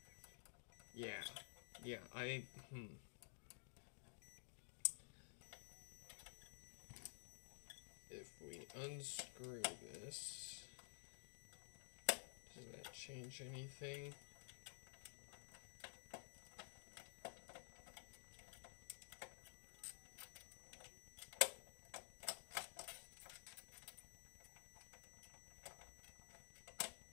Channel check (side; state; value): right; silent; digital silence